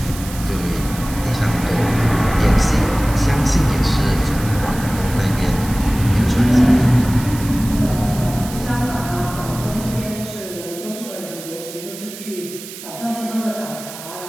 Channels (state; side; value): noise; right; hiss, 13 dB below the sound